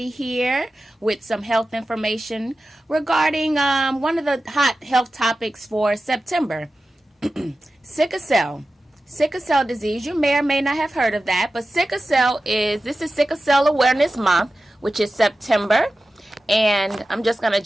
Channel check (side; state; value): both; normal; correlation 0.94